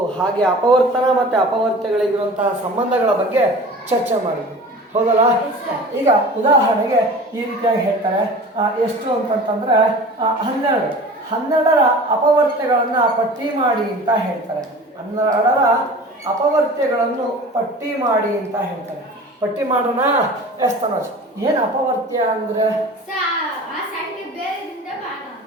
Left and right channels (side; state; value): both; normal; correlation 0.40